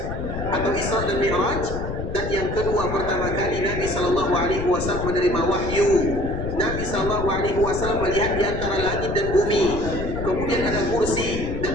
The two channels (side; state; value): left; noise; rumble, 5 dB below the sound